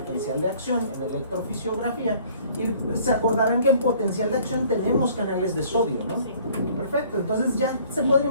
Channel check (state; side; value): inverted; both; correlation -0.55